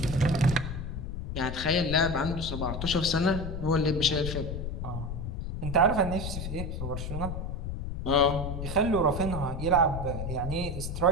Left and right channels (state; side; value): noise; left; rumble, 5 dB below the sound